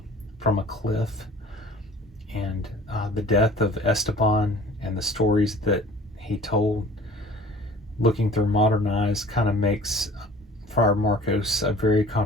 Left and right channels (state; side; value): normal; both; correlation 0.47